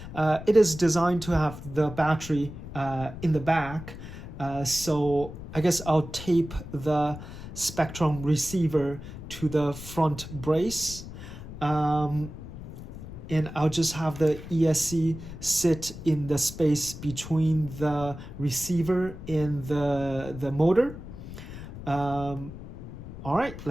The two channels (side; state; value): left; noise; rumble, 12 dB below the sound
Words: It is designed to have the battery in the back, so I guess I'll tape the Spectrum receiver to the front brace. And I'll just have the ESC sit in the space between the receiver and the motor. All right,